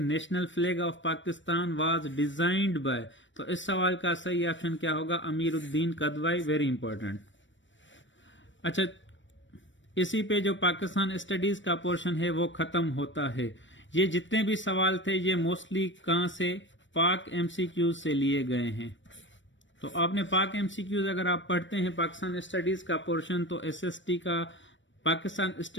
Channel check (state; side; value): late; right; 0.55 ms